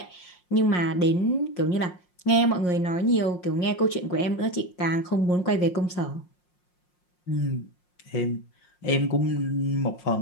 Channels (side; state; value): right; late; 5.6 ms